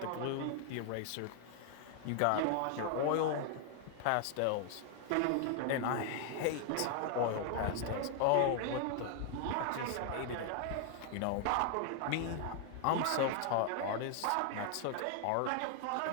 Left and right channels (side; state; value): both; different; correlation 0.00